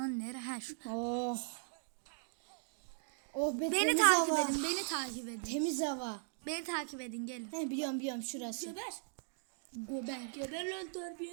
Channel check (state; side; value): silent; left; digital silence